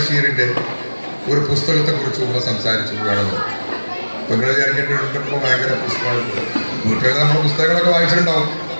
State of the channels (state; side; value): inverted; both; correlation -1.00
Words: ഒരു പുസ്തകത്തെക്കുറിച്ച് ഉമ്മ സംസാരിച്ചു വേണമെന്ന്. നിങ്ങൾ വിചാരിക്കേണ്ടപ്പോൾ ഭയങ്കര പുസ്തകമാണ്. വീട്ടിൽ നമ്മൾ പുസ്തകങ്ങളൊക്കെ വായിച്ചിട്ടുണ്ടാവും.